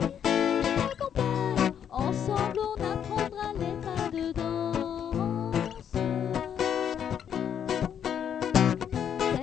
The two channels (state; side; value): quieter; right; 8.7 dB